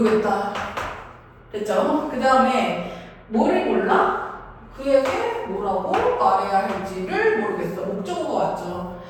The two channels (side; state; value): both; identical; correlation 1.00